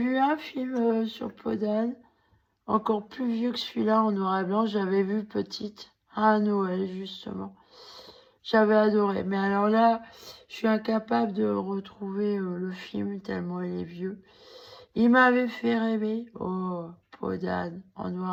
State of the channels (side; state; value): both; identical; correlation 1.00